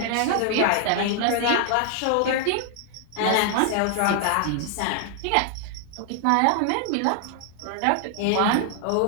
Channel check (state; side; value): different; both; correlation 0.00